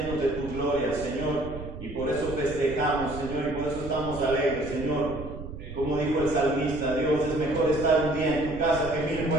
de tu gloria, Señor, y por eso festejamos, Señor, y por eso estamos alegres, Señor. Como dijo el salmista, Dios, es mejor estar un día en tu casa que 1000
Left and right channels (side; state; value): right; noise; rumble, 11 dB below the sound